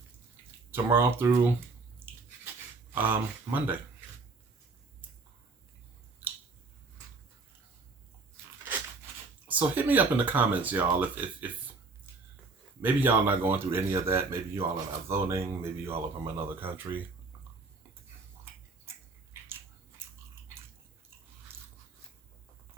tomorrow through Monday. So hit me up in the comments, y'all, if maybe y'all not going through any of that. Maybe you all are not voting. Maybe you all are from another country.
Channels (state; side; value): quieter; left; 3.8 dB